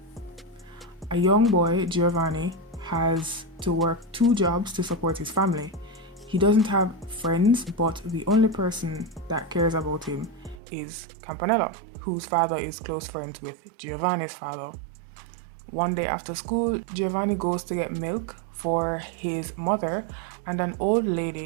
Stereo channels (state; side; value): drops out; left; at 10.6 s